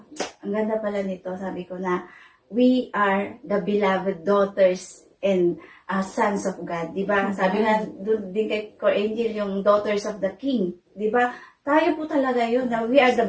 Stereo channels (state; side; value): identical; both; correlation 1.00